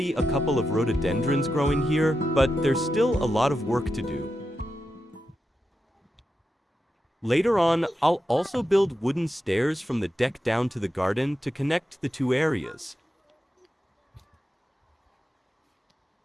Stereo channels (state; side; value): normal; both; correlation 0.88